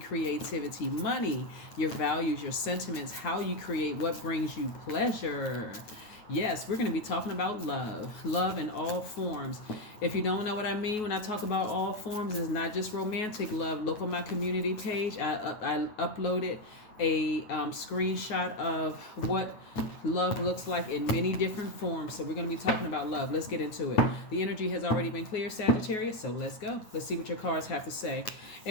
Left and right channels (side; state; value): right; late; 9.5 ms